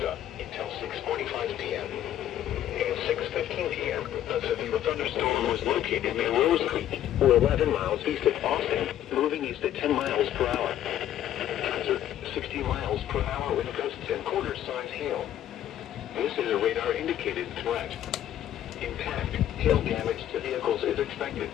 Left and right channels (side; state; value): right; quieter; 11.5 dB